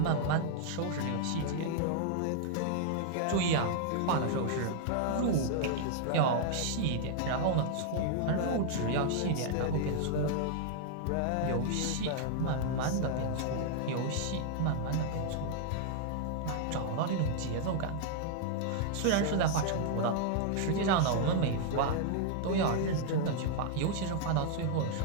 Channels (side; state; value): both; different; correlation -0.01